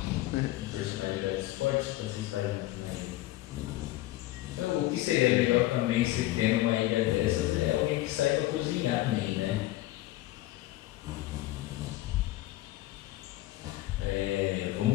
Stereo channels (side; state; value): right; quieter; 16.5 dB